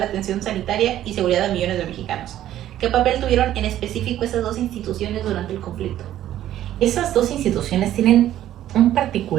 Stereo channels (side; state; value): left; quieter; 12.5 dB